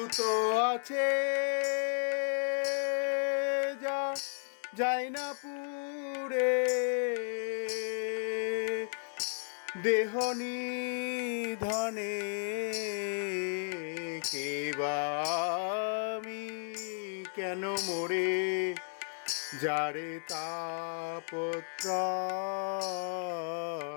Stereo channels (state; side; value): silent; right; 55 dB below the other